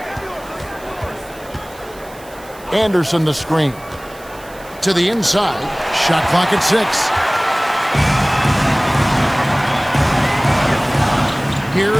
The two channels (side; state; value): right; noise; hiss, 22 dB below the sound